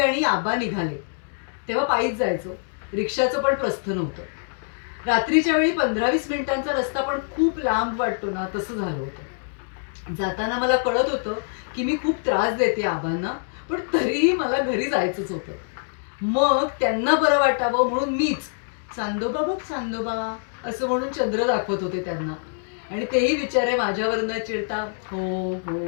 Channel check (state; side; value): silent; right; digital silence